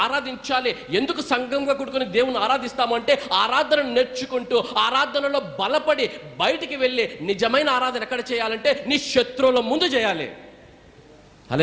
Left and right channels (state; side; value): identical; both; correlation 1.00